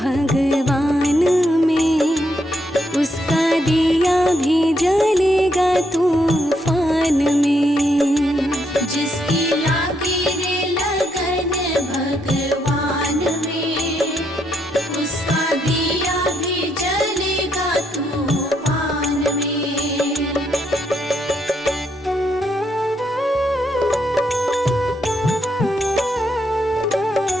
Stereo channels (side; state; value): both; normal; correlation 0.76